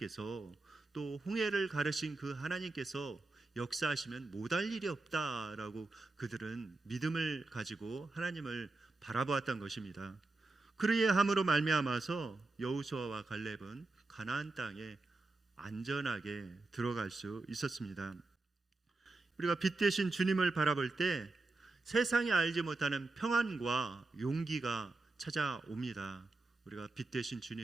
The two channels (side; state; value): left; quieter; 3.3 dB